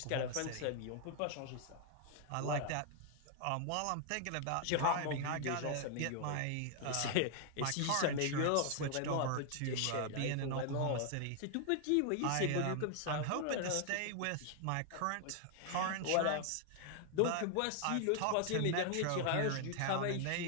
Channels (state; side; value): different; both; correlation 0.00